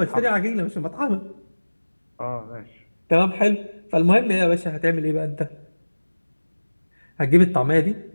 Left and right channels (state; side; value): inverted; both; correlation -1.00